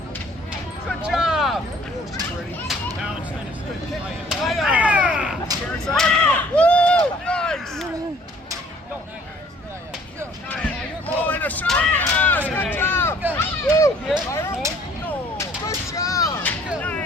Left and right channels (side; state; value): both; normal; correlation 0.57